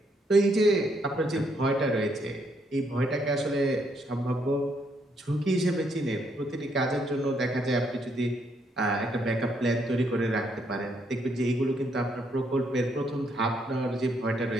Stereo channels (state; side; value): normal; both; correlation 0.73